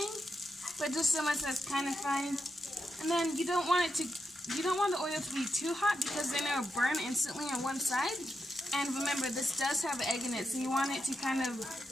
but just so much that's kind of frying. And then you don't want the oil to be too hot because then it'll burn instantly on one side. And remember, this does have egg in it, so you want it to kind of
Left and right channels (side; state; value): both; normal; correlation 0.85